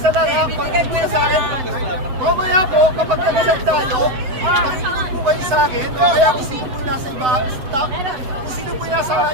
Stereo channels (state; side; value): late; left; 7.9 ms